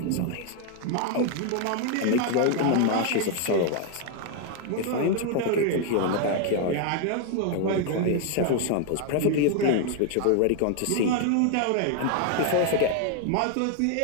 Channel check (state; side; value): different; both; correlation 0.00